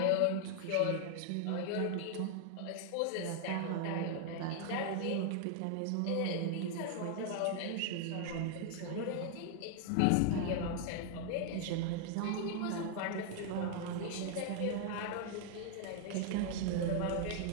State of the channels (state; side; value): different; both; correlation 0.00